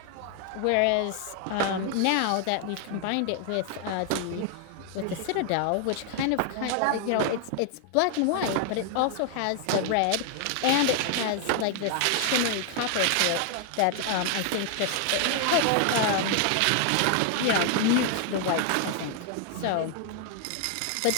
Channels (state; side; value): different; both; correlation 0.00